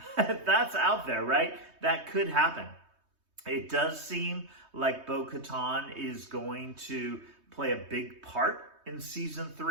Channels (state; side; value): late; left; 3.2 ms